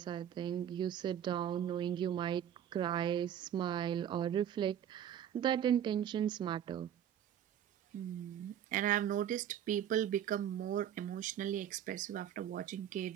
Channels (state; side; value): quieter; left; 10.0 dB